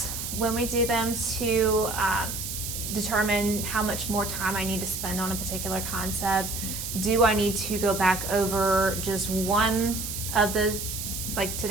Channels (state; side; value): noise; right; hiss, 5 dB below the sound